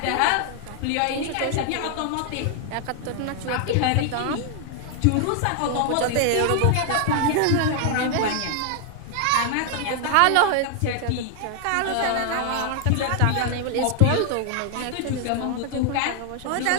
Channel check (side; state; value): both; different; correlation 0.00